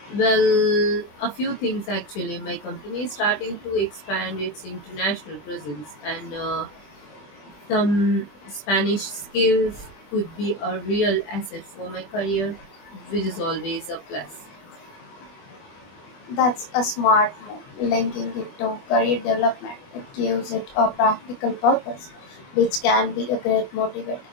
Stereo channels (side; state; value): right; late; 20 ms